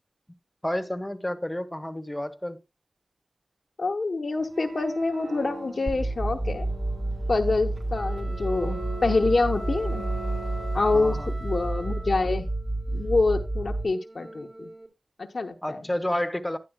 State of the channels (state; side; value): normal; both; correlation 0.95